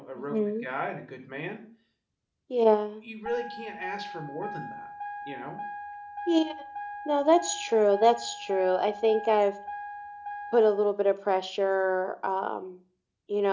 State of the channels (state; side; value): identical; both; correlation 1.00